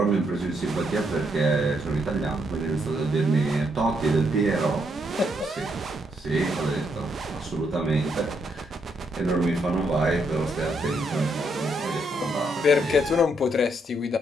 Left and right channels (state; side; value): normal; both; correlation 0.76